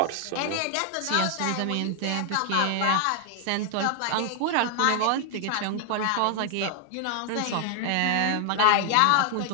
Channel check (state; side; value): different; both; correlation 0.00